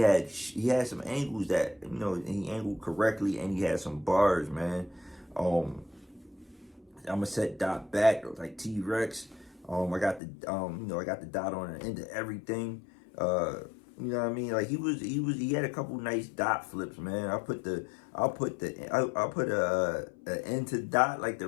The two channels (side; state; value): right; drops out; at 10.2 s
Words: some angles that, you know, he angled correctly, and he had some bars, man. I'm gonna set Dot back like T-Rex. I got the I got the dot on the end of everything. You know what I mean? Like he had a couple nice dot flips, man. I'll put a end to Dot, like the